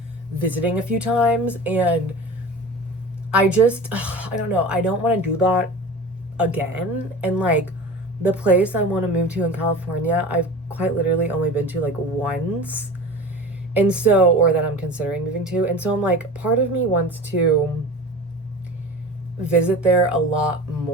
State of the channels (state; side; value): normal; both; correlation 0.34